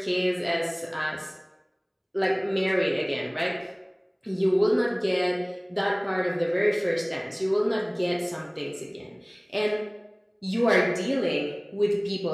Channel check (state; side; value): identical; both; correlation 1.00